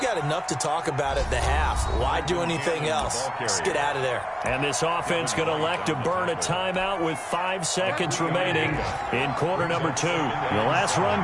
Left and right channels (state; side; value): identical; both; correlation 1.00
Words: got enough to talk about at the half. Why do anything else? Just get out of there. And this offense going to elect to burn a timeout with 5 seconds remaining in quarter number 2. The last run